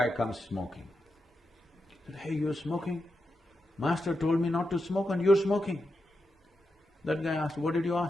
comes smoking. He said, "Hey, you're smoking? Master told me not to smoke and you're smoking." That guy asked, "What did you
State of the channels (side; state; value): both; normal; correlation 0.87